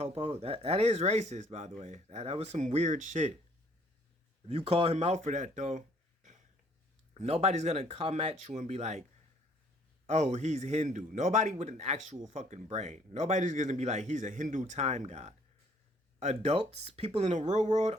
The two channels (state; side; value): normal; both; correlation 0.61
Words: that is racist by the way. That was some weird shit. If you call him out for that though, nobody's gonna come at you and be like, oh, he's Hindu. Nobody with an actual fucking brain. Nobody's gonna be like, he's a Hindu time god. Adults, people in the real world,